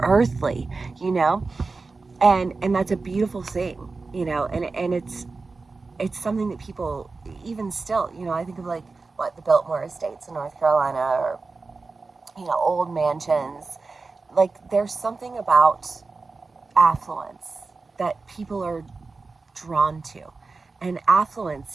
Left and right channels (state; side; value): quieter; left; 4.0 dB